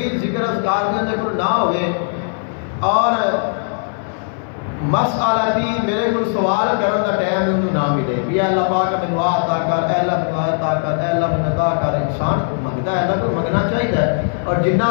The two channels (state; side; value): silent; right; digital silence